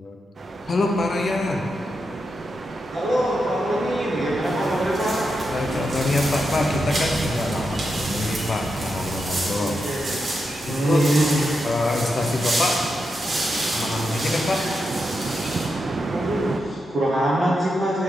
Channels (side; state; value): both; normal; correlation 0.86